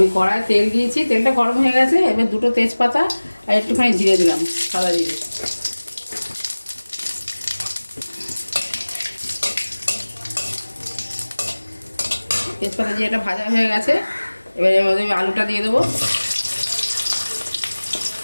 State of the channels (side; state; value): both; inverted; correlation -1.00